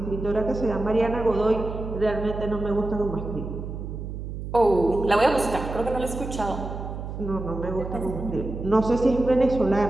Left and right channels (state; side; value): noise; right; hum, 7 dB below the sound